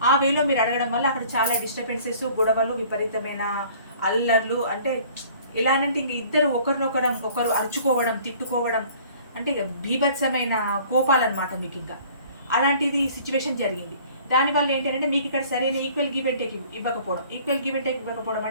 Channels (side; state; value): both; inverted; correlation -0.52